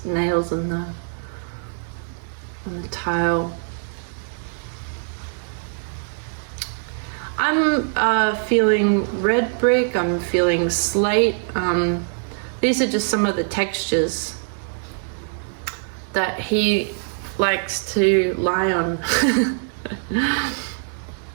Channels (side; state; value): left; silent; digital silence